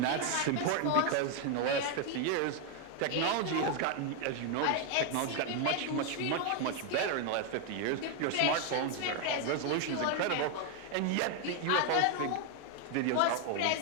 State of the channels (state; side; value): different; both; correlation 0.01